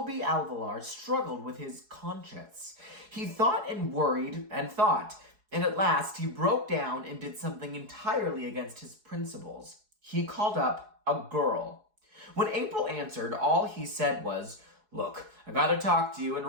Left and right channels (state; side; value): late; left; 4.7 ms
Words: Alvalar struggled with his conscience. He thought and worried and thought, and at last he broke down and did something entirely against his principles. He called up a girl. When April answered, all he said was, "Look, I gotta talk to you and